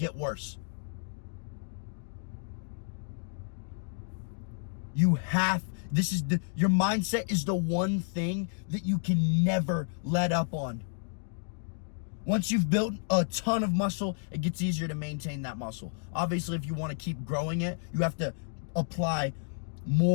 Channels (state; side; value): silent; right; 57 dB below the other